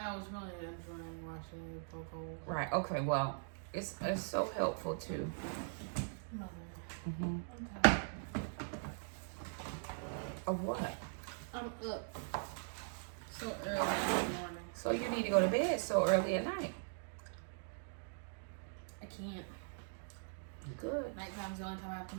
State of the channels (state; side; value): silent; left; digital silence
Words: was really enjoying watching you poke holes. Right. Okay. Well, it's so helpful too. Mother. Okay. Of what? I'm up so early in the morning. So you need to go to bed so early at night. I can't. Good. Nighttime's the only time I have to